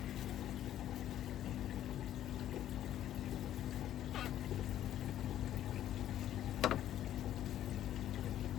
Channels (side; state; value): right; quieter; 11.8 dB